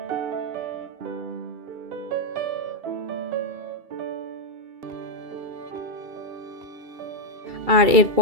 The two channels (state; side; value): late; left; 2.7 ms